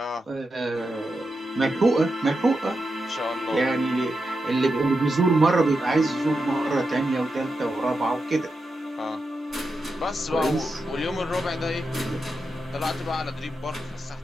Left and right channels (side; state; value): both; normal; correlation 0.87